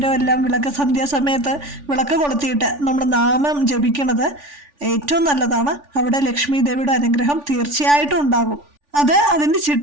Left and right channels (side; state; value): left; late; 3.5 ms